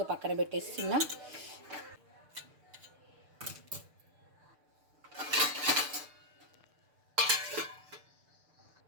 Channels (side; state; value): left; late; 6.7 ms